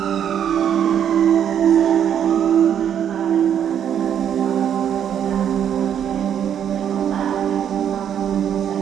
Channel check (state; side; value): quieter; left; 9.1 dB